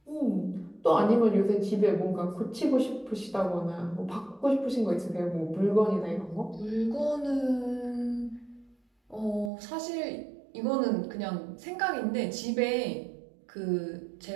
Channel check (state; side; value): drops out; left; at 9.5 s